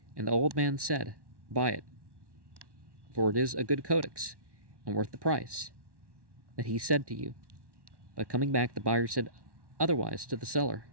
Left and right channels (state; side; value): late; left; 1.1 ms